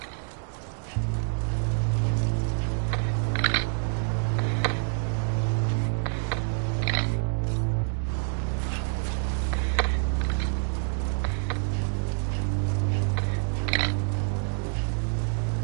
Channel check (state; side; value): silent; left; 59 dB below the other